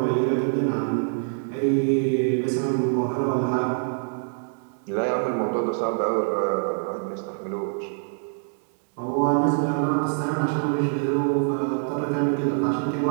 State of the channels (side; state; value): left; silent; 62 dB below the other